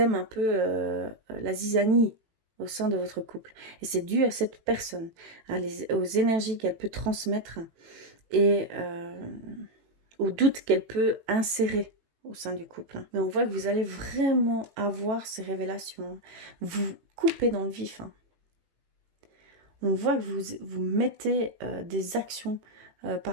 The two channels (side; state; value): left; late; 18 ms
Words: un peu la zizanie au sein de votre couple. Et c'est dû à cette personne, aux énergies qu'elle peut transmettre et aux doutes qu'elle peut insérer au sein du couple. Mais on voit que vous allez vraiment avoir ces révélations. Vous coupez dans le vif. Hein. On voit que vous mettez des actions